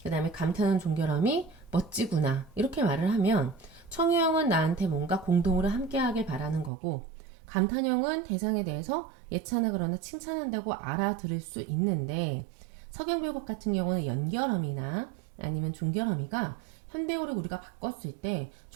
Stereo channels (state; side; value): drops out; left; at 6.7 s